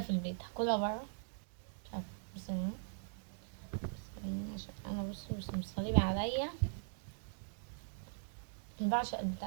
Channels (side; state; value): left; silent; digital silence